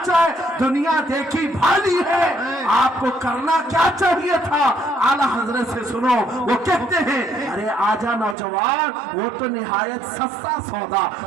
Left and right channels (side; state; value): left; drops out; at 8.3 s